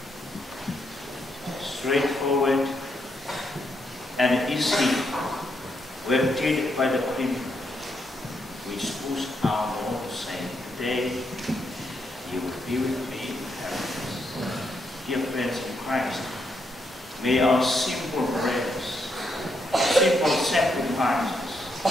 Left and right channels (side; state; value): both; normal; correlation 0.79